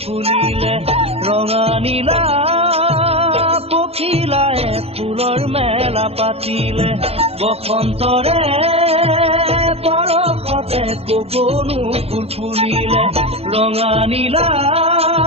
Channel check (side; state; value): left; late; 0.29 ms